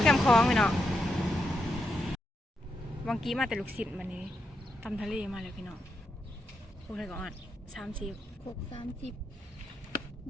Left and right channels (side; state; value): both; normal; correlation 0.83